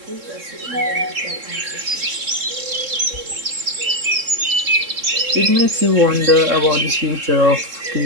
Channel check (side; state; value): left; late; 3.7 ms